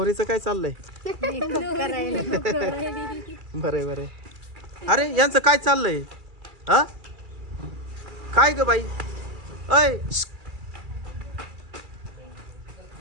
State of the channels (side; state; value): left; late; 2.3 ms